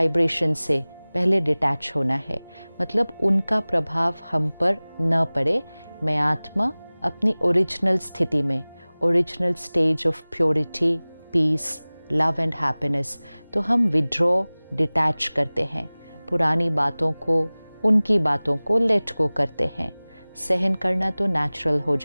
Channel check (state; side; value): inverted; both; correlation -1.00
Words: से पहले डिटैच होना है, मतलब उनका प्रभाव हम पर न पड़े। मैं आत्मा अपनी ओरिजिनल स्थिति में, original stage of purity, peace, love and happiness, तो हम विड्रॉ, डिटैच करते हैं, पुरानी बातों को, उनकी बातों को लेट गो करते हैं। सहन करना तो नेचुरल हो